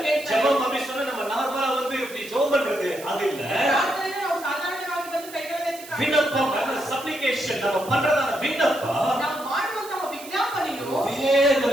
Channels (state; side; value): noise; right; hiss, 16 dB below the sound